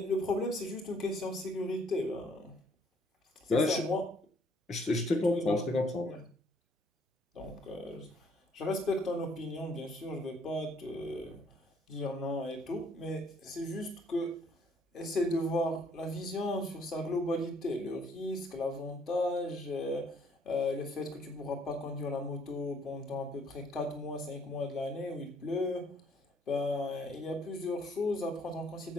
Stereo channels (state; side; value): normal; both; correlation 0.65